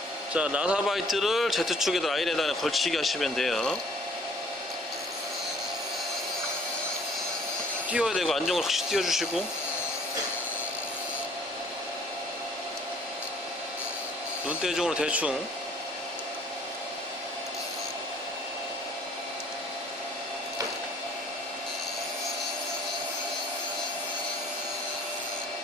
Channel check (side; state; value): both; normal; correlation 0.56